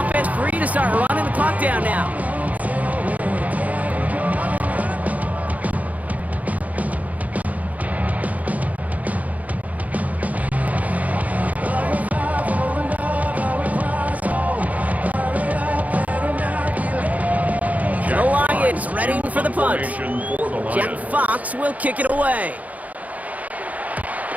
free to start running the clock down now. The Lions ready for the punt. Jack Fox will kick it away.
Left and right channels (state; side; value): late; left; 0.074 ms